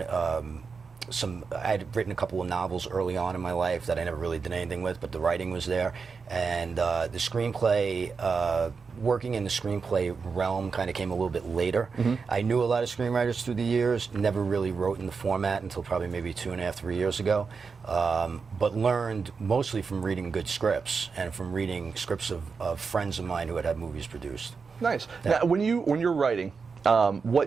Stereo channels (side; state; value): left; quieter; 5.2 dB